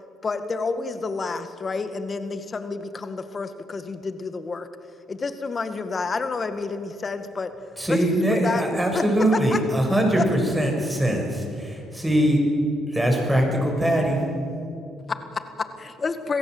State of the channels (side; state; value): both; normal; correlation 0.80